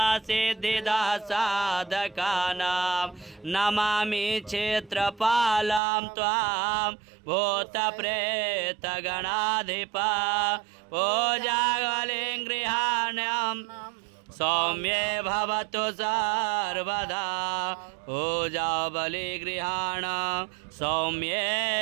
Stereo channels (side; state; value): left; drops out; at 5.8 s